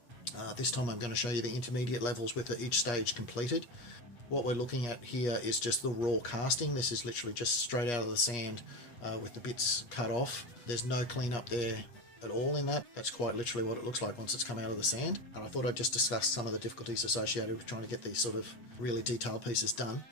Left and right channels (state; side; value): late; right; 8.4 ms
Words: This time I'm going to show you the intermediate levels with each stage completed. What we're looking at here is just the raw casting. This is literally just straight out of the sand with the bits cut off. There's no cleanup there at all in that. That's quite literally what it looks like once it's come out of the sand. And I thought I'd just discuss some of the difficulties associated with trying to get these sort of really detailed pieces done.